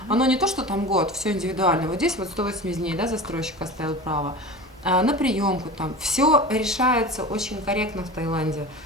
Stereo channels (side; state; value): both; normal; correlation 0.32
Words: оно не то, что там год, все индивидуально, вот здесь вот 180 дней, да, застройщик оставил право, на приемку там, все решается очень корректно в Таиланде.